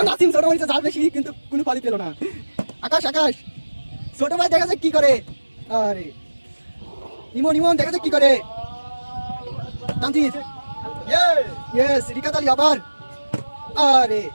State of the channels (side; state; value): both; inverted; correlation -1.00